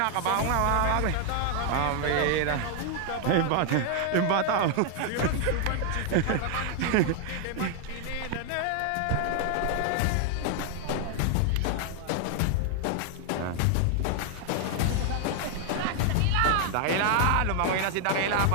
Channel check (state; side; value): different; both; correlation 0.00